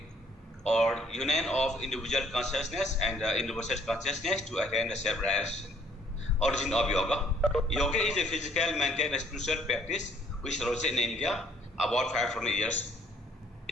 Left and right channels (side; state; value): both; normal; correlation 0.62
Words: or union of individual consciousness and universal consciousness to attain the self-realization. Origin of yoga. Yoga is a physical, mental, and spiritual practice which arose in India about 500 years.